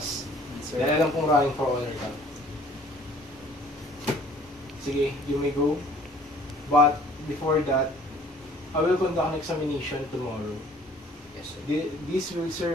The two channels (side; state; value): both; normal; correlation 0.55